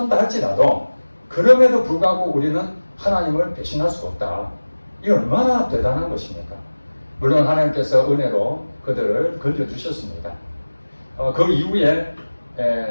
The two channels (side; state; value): both; inverted; correlation -1.00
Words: 할지라도 그럼에도 불구하고 우리는 하나님을 배신할 수가 없다. 이 얼마나 대단한 것입니까? 물론 하나님께서 은혜로 그들을 건져주셨습니다. 그 이후에